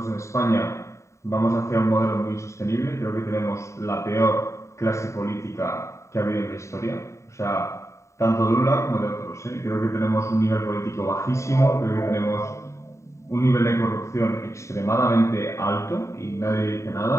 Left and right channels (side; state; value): right; late; 0.14 ms